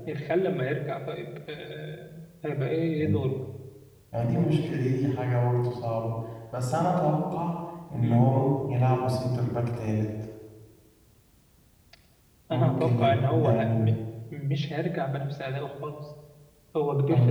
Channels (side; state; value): both; identical; correlation 1.00